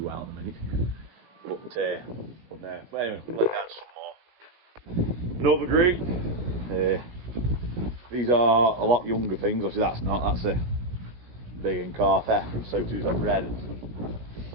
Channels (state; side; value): late; left; 17 ms